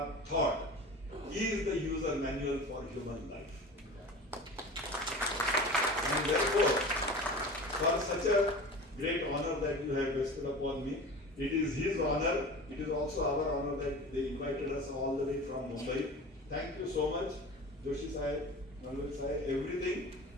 thought is the user manual for human life. And therefore, for such a great honor that you have bestowed upon me, it is his honor, it is also our honor that they invited us all the way from Mumbai. Thank you so much, Joshi Sahib, Nalwal Sahib, everything.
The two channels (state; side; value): normal; both; correlation 0.35